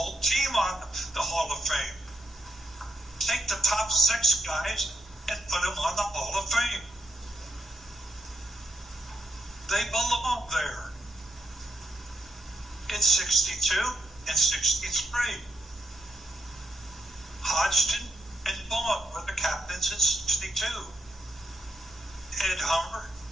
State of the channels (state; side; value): normal; both; correlation 0.79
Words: team on the Hall of Fame. Take the top 6 guys and put them on the Hall of Fame. They belong there. In 62 and 63. Hodgson and Vaughn were the captains in 62. Ed Hummer